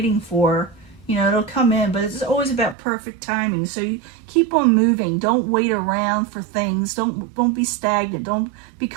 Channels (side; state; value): left; drops out; at 2.8 s